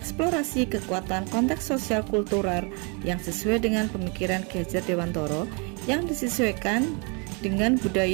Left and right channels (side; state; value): left; quieter; 33.6 dB